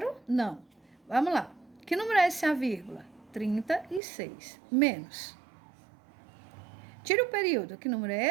Não. Vamos lá. Que número é esse a vírgula? 36. Menos. Tira o período. Que número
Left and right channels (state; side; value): drops out; left; at 4.0 s